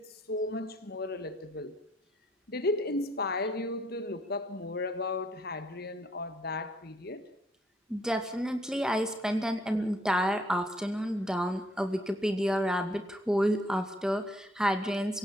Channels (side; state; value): both; normal; correlation 0.67